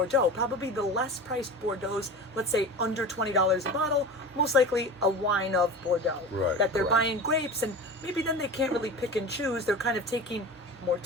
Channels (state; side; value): normal; both; correlation 0.32